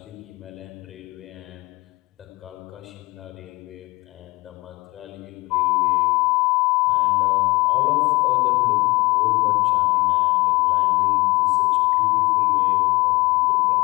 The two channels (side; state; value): right; quieter; 23.0 dB